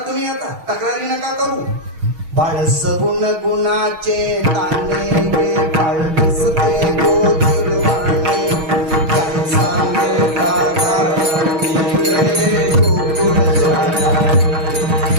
आता, तक्रारी नका करू. बाळ सगुण गुणाचे ताने गे, बाळ दिसते गोदी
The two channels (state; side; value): late; left; 6.3 ms